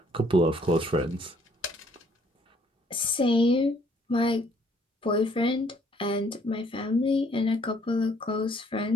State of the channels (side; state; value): both; normal; correlation 0.64